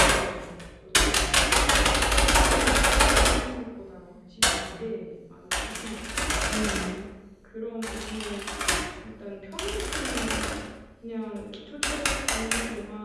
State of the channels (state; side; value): identical; both; correlation 1.00